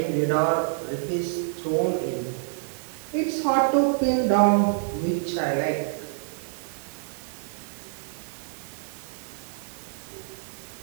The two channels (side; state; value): left; silent; 60 dB below the other